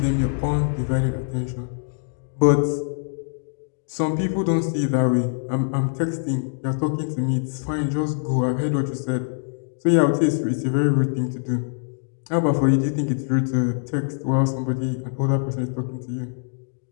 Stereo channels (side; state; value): right; silent; digital silence